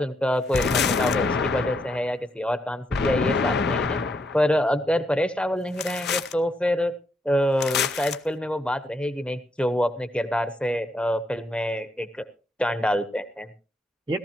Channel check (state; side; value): normal; both; correlation 0.77